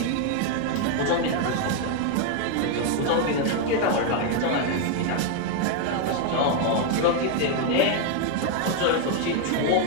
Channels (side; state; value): both; different; correlation 0.01